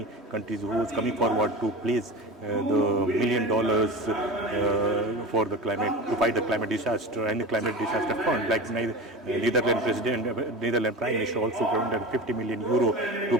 countries who was coming forward to place the $1 million for the climate, to fight the climate disaster and the climate disaster fund, like Netherlands Prime Minister also granted 50 million euro to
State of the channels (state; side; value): normal; both; correlation 0.30